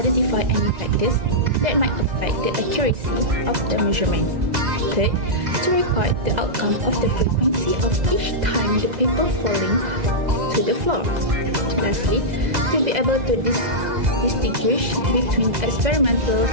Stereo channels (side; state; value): left; late; 2.0 ms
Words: any factors that might affect the accuracy of the measurement. Third, to record the outcome of the frequency of each time the paper falling to the floor. Lastly, to be able to distinguish between experimental